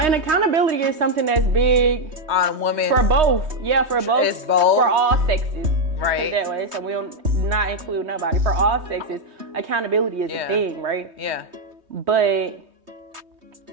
accountability is something that's big on women. For both. Yeah, for both. It's both. For all sexes. Right. That way. So we don't not include nobody. For all sexes, accountability is a thing, right? Yeah. But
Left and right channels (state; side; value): late; left; 3.2 ms